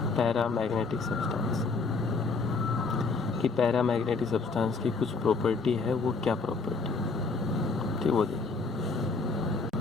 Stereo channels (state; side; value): quieter; right; 4.2 dB